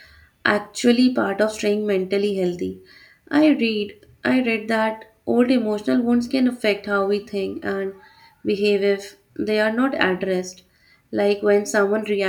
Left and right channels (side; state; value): both; identical; correlation 1.00